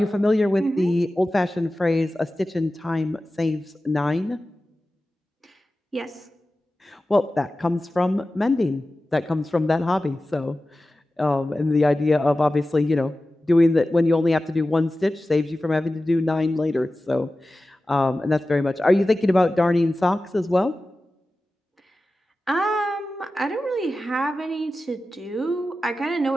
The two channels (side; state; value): both; normal; correlation 0.95